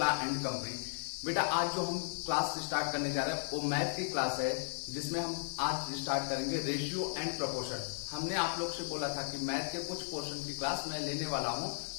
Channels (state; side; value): silent; right; 54 dB below the other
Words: and company. बेटा आज जो हम class start करने जा रहे हैं वो मैथ की क्लास है, जिसमें हम आज स्टार्ट करेंगे रेशियो एंड प्रोपोर्शन। हमने आप लोग से बोला था कि मैथ के कुछ पोर्शन की क्लास मैं लेने वाला हूं,